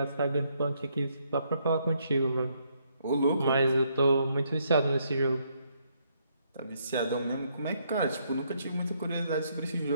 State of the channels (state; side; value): inverted; both; correlation -0.73